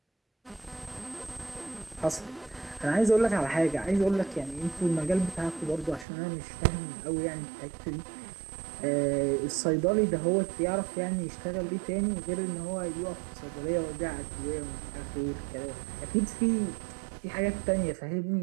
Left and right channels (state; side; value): drops out; left; at 6.1 s